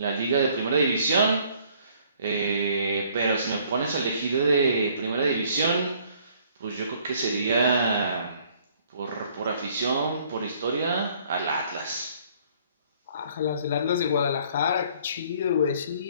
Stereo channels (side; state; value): both; inverted; correlation -0.60